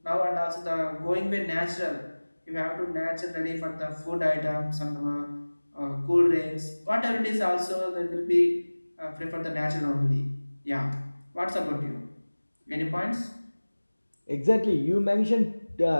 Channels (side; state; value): both; inverted; correlation -1.00